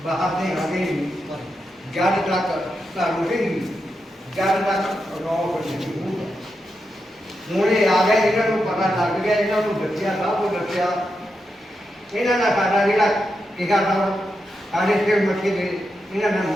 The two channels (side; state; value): both; normal; correlation 0.86